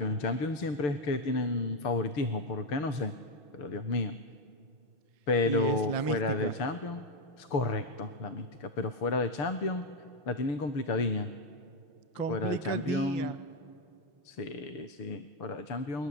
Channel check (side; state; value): right; late; 6.8 ms